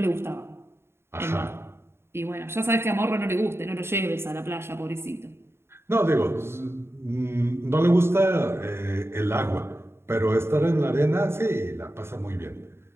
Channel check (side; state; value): left; late; 0.12 ms